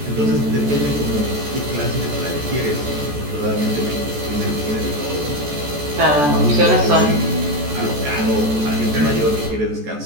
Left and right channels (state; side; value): late; left; 14 ms